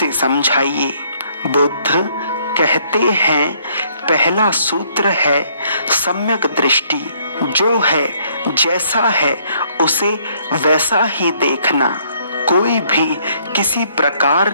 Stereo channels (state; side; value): inverted; both; correlation -0.66